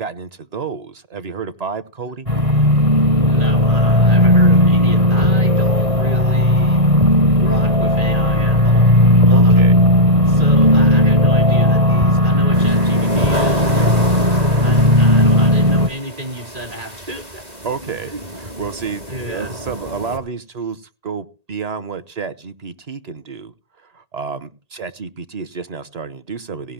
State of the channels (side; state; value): left; late; 1.8 ms